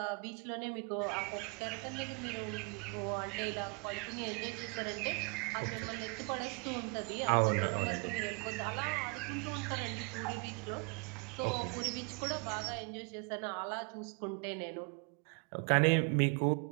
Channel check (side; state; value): left; quieter; 32.9 dB